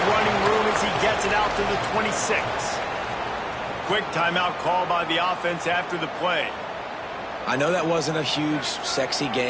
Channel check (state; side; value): identical; both; correlation 1.00